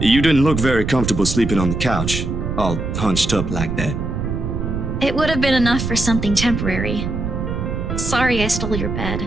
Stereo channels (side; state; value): right; noise; rumble, 3 dB below the sound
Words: You didn't look very comfortable sleeping on the couch, all hunched up like that. It would have been enough for something temporary. Sorry I stole your bed.